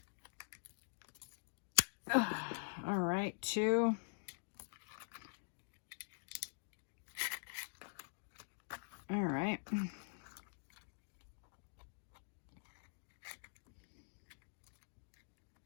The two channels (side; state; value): right; silent; digital silence